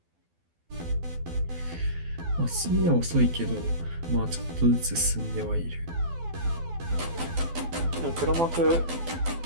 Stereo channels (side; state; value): left; late; 12 ms